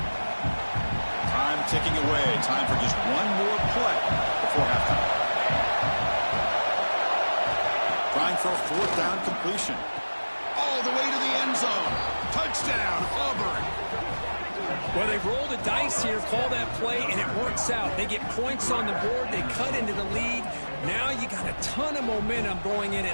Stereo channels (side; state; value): both; inverted; correlation -1.00